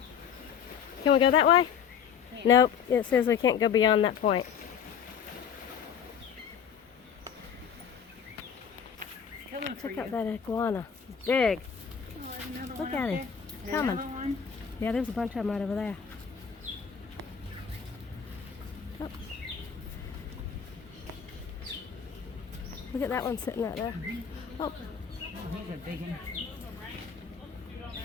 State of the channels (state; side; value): quieter; right; 7.4 dB